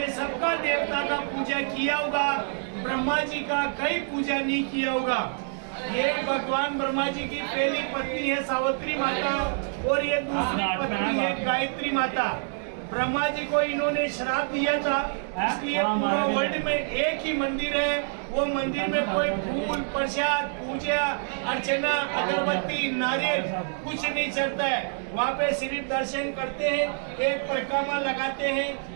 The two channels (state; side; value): silent; left; 60 dB below the other